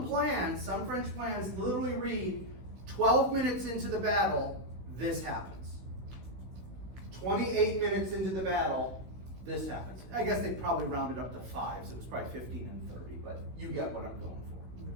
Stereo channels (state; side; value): late; left; 16 ms